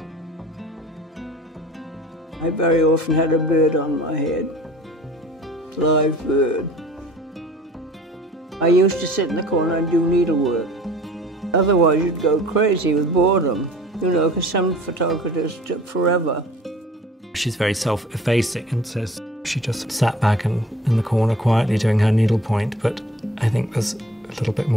I very often had a bird on my head, live bird. I used to sit in the corner and do needlework. Otherwise, you'd go crazy with boredom, you know, because some photographers took forever. She's very self-effacing and says she just sat back in the corner quietly doing her needlepoint, but I think there's a little bit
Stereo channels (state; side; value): normal; both; correlation 0.46